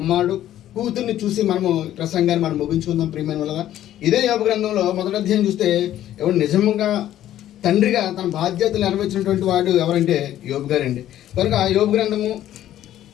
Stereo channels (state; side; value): quieter; right; 12.4 dB